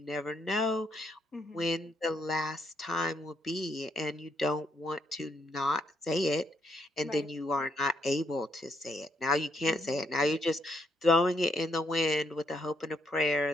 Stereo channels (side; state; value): both; normal; correlation 0.74